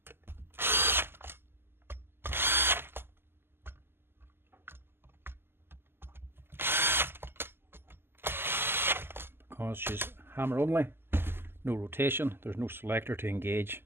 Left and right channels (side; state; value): left; late; 0.11 ms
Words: Because she's hammer only, no rotation, there's no selector to engage,